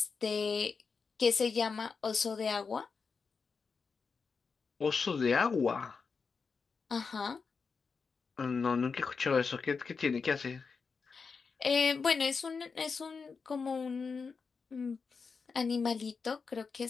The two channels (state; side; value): quieter; right; 5.2 dB